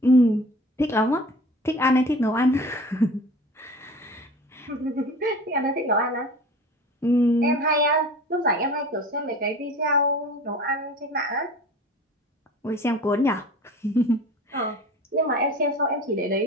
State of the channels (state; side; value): normal; both; correlation 0.40